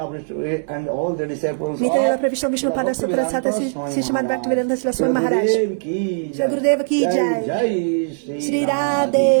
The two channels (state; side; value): silent; left; 66 dB below the other